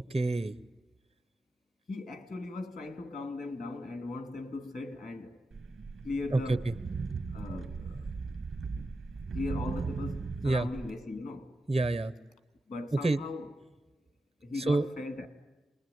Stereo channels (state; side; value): normal; both; correlation 0.89